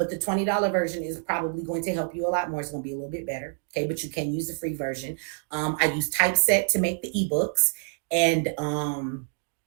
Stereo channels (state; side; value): silent; left; 60 dB below the other